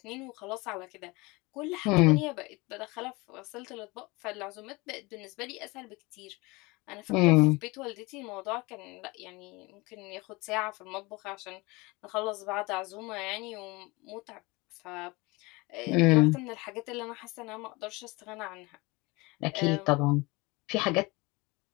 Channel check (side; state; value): right; quieter; 24.3 dB